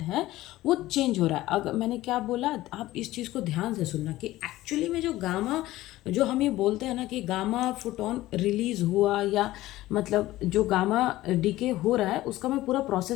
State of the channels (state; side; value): quieter; right; 16.4 dB